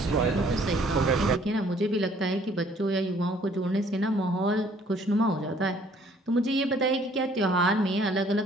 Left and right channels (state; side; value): normal; both; correlation 0.60